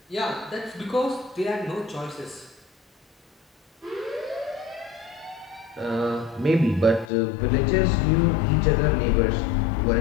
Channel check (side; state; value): right; drops out; at 7.1 s